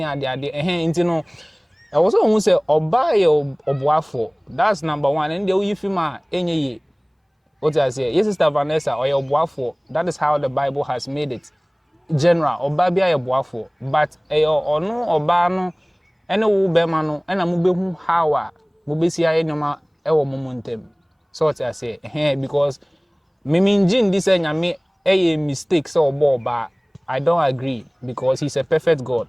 ade nti no I was who say oba ye oboafo that's number 1 and the you film a enye ye. What I say, yes, Sister Vanessa, or your boafo. That is how the Bible has made it. General, or babia your boafo. But or no, or bano, and no bemano, and a mube hawa, mubesia enoma, ewo momentum. So what I say, because Miminjin this and me a mistake so but I don't agree because he's a perfect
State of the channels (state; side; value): identical; both; correlation 1.00